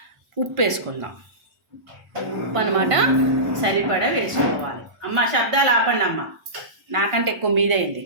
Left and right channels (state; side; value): late; left; 1.4 ms